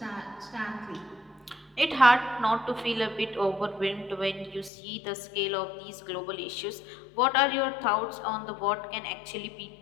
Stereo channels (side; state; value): right; drops out; at 4.7 s